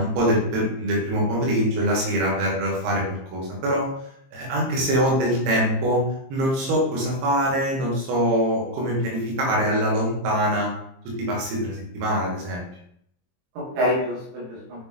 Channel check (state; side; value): late; left; 22 ms